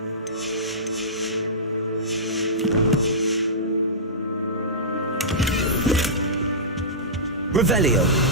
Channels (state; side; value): normal; both; correlation -0.19